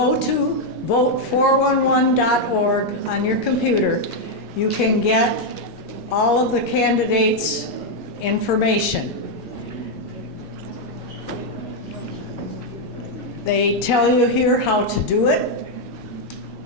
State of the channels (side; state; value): both; normal; correlation 0.00